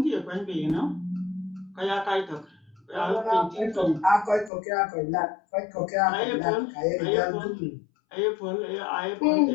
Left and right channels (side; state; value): right; drops out; at 4.5 s